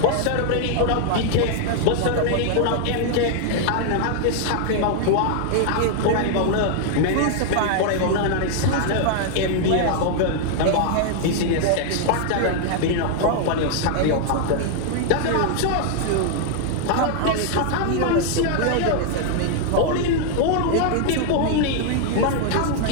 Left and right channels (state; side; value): different; both; correlation 0.00